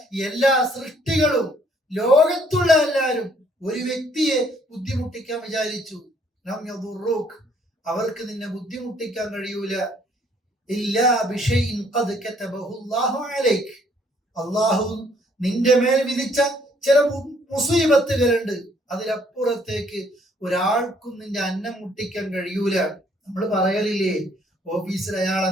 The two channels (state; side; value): normal; both; correlation 0.64